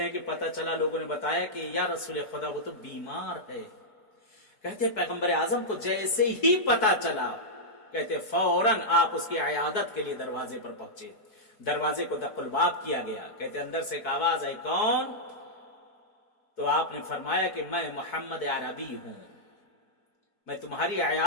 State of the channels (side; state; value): right; late; 4.6 ms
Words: ہیں کہ پتا چلا، لوگوں نے بتایا کہ یا رسول خدا وہ تو بیمار ہے. کہتے ہیں پیغمبر اعظم کو جیسے ہی پتا چلا، کہتے فوراً آپ اس کی عیادت کے لیے دروازے پر پہنچے. دروازے کو دق الباب کیا گیا. کہتے اندر سے ایک آواز آئی، کون؟ تو آپ نے فرمایا کہ میں محمد عربی ہوں، میں تمہاری